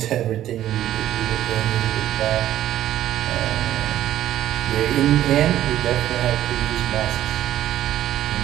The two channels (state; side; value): quieter; left; 12.6 dB